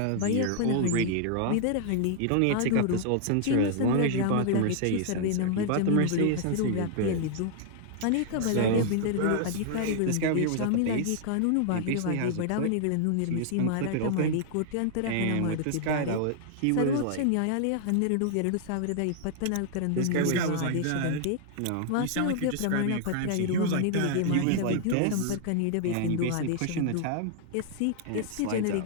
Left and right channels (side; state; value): both; different; correlation -0.01